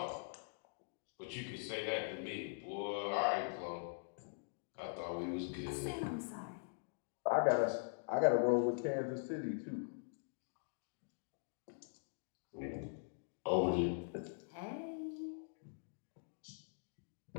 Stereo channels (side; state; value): right; silent; digital silence